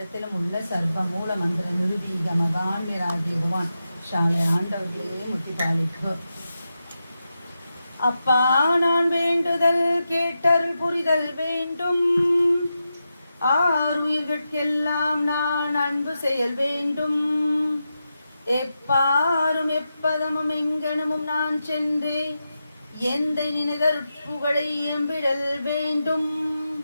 உள்ள சர்வ மூல மந்திர நிருதீக மகான் விராகிடுவான் ஷாலை ஆண்டவர்களே முத்தி பாலிப்பு. அப்பா நான் வேண்டுதல் கேட்டருள் புரிதல் வேண்டும். ஆறுயிர்கட்கெல்லாம் நான் அன்பு செயல் வேண்டும். எப்பாரும் எப்பதமும் எங்கனமும் நான் சென்றே எந்த நினைதற் புகழை எம்பிடல் வேண்டும்.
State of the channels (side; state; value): both; inverted; correlation -0.89